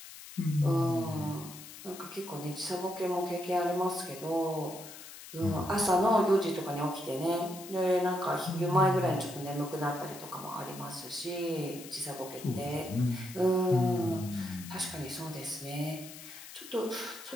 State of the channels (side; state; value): left; noise; hiss, 14 dB below the sound